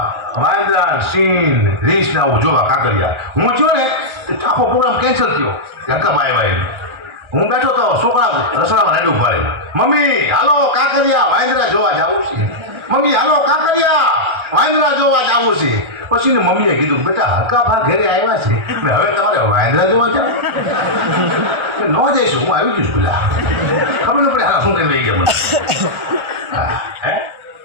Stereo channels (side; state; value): left; late; 1.3 ms